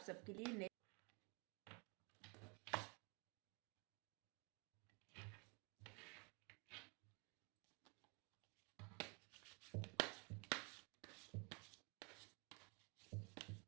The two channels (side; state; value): left; quieter; 32.8 dB